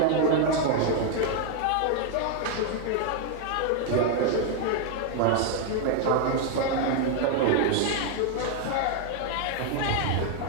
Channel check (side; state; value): both; different; correlation 0.00